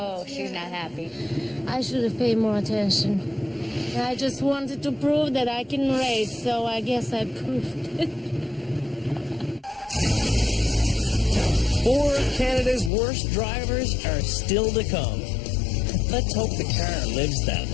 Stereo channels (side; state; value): right; drops out; at 12.9 s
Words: she's not happy. I should have paid more attention. I just wanted to prove that I can race, so I guess I proved it. 4 of Canada's worst drivers are still to come. Let's hope the car lives that